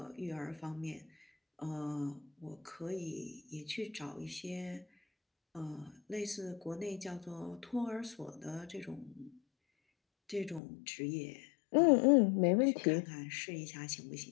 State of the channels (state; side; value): drops out; right; at 10.6 s